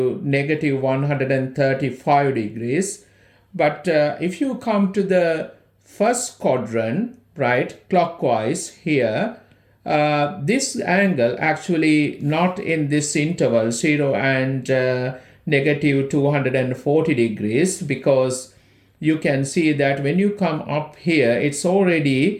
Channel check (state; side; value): identical; both; correlation 1.00